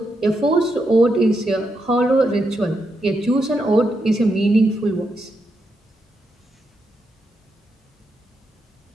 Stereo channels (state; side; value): normal; both; correlation 0.83